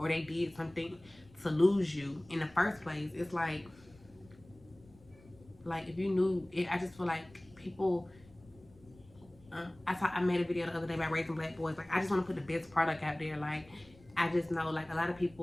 they did something to lose you in the first place, it's like if you knew it, I just feel like people. I made a video the other day about raising black boys. Like I just want to put the best product out there. Like I just know like a lot of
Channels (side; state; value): left; noise; rumble, 25 dB below the sound